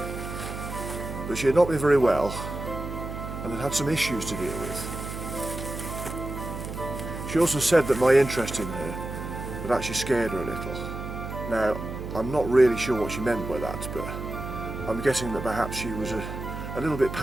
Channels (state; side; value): noise; right; hum, 7 dB below the sound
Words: that she had not been very well and had had some issues to deal with. She also said that my interest in her had actually scared her a little. Now, I'm not really sure what she meant by that, but I'm guessing that perhaps she was a little bit